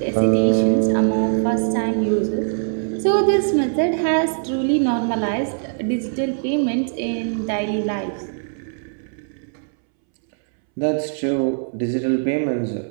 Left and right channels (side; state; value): left; silent; 65 dB below the other